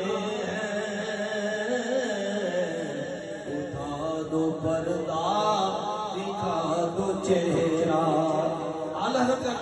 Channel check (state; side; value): identical; both; correlation 1.00